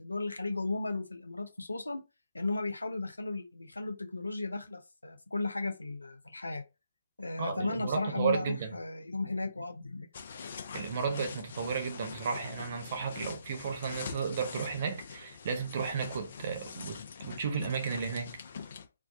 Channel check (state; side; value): inverted; both; correlation -0.76